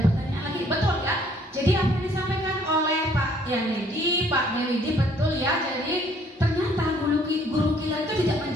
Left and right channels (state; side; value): normal; both; correlation 0.61